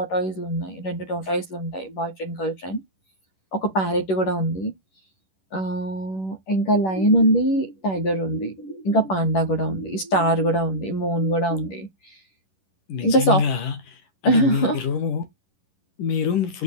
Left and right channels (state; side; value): late; right; 11 ms